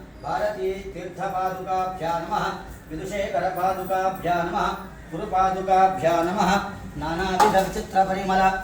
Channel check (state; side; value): identical; both; correlation 1.00